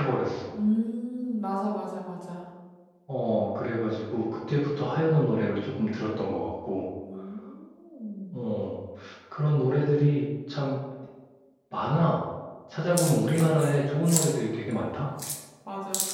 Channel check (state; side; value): identical; both; correlation 1.00